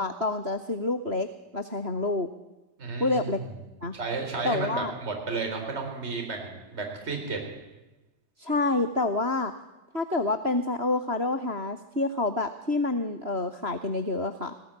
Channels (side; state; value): left; late; 3.0 ms